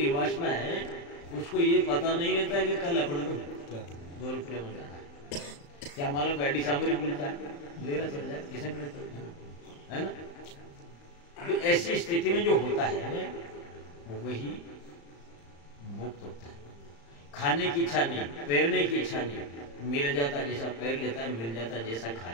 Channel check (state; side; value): late; right; 35 ms